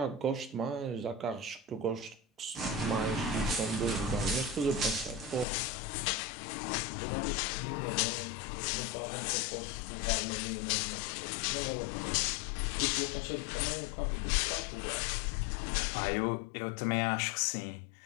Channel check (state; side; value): drops out; right; at 5.5 s